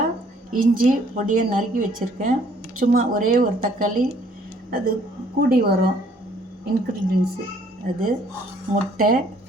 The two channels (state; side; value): normal; both; correlation 0.61